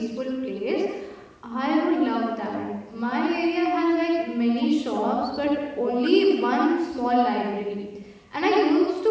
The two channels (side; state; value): both; identical; correlation 1.00